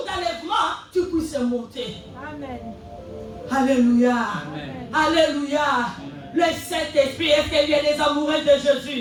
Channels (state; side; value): identical; both; correlation 1.00